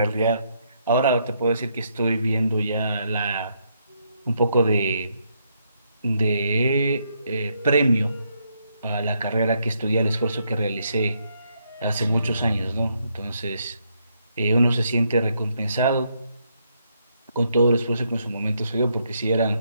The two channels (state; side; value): inverted; both; correlation -0.76